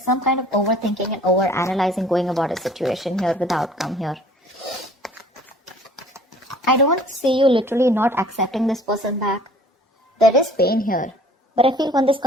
some kind of overthinking and over-analyzing going about a situation here with the outcome here. I don't see you literally not accepting this person back. There is pain here. But I feel when this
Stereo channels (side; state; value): both; normal; correlation 0.52